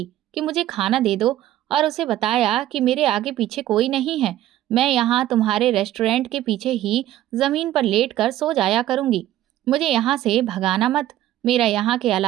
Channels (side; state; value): left; quieter; 13.5 dB